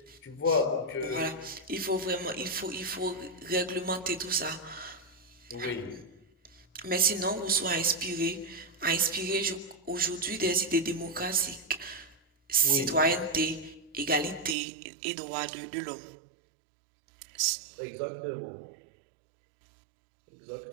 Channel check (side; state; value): left; drops out; at 14.6 s